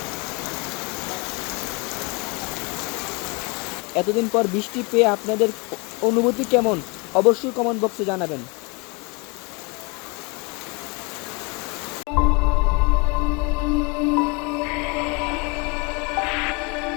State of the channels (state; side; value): quieter; right; 30.0 dB